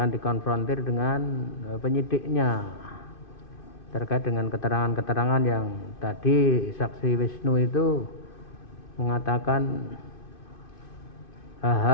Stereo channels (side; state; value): right; late; 2.5 ms